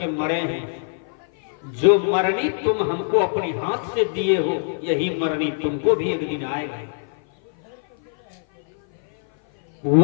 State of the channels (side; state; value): right; silent; 56 dB below the other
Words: मरे हैं, जो मरनी तुम हमको अपने हाथ से दिए हो, यही मरनी तुमको भी एक दिन आएगा।